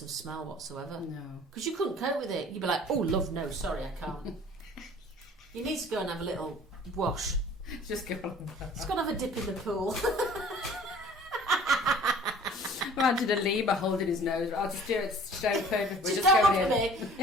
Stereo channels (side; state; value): both; normal; correlation 0.49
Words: of smell whatsoever. No. Because you couldn't cope with it. You'd be like, oh, love, no, sorry, I can't. You need to go and have a little wash. Just go on. Just go and have a dip in the pool. Imagine a lemur holding his nose. I'll just do it straight open. Just don't look at